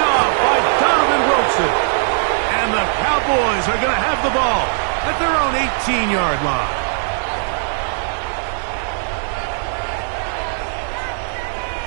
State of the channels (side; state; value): left; silent; digital silence